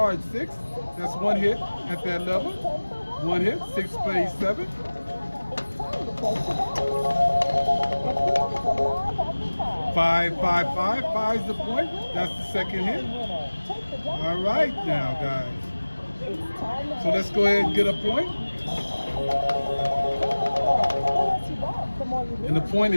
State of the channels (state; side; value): inverted; both; correlation -1.00